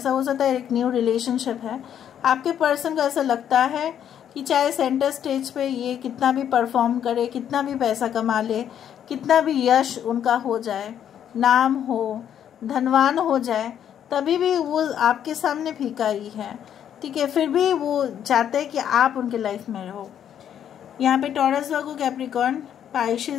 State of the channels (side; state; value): right; quieter; 9.5 dB